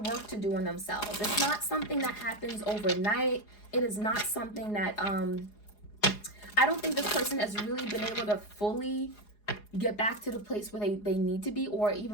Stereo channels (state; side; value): late; right; 4.8 ms